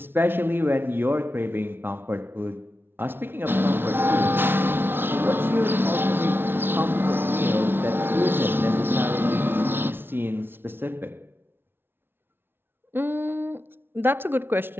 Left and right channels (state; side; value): late; left; 0.11 ms